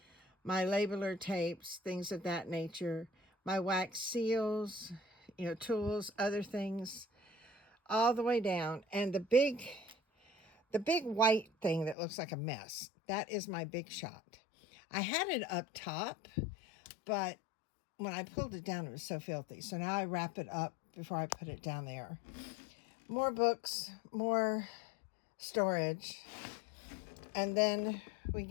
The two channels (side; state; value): right; drops out; at 12.0 s